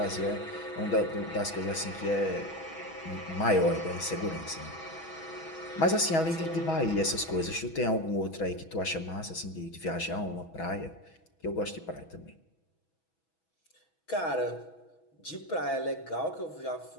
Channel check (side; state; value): right; late; 6.2 ms